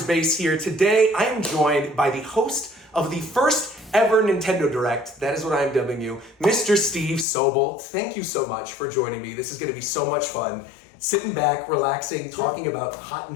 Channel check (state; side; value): drops out; right; at 7.2 s